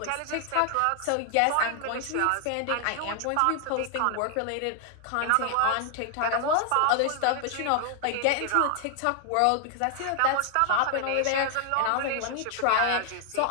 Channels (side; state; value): both; different; correlation 0.00